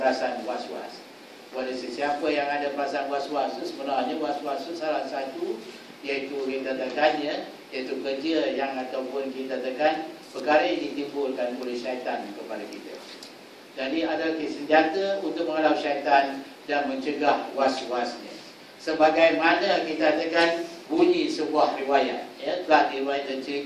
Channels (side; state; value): both; identical; correlation 1.00